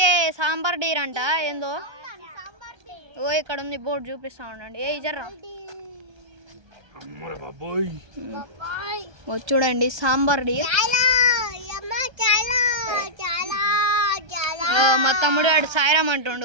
సాంబార్ డీర్ అంట. ఏందో ఓ ఇక్కడ ఉంది బోర్డు చూపిస్తా ఉండండి. ఏ జర్రా చూడండి సాంబార్ డీర్. మా తమ్ముడు వాడు సాయిరామ్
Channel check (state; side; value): late; left; 1.3 ms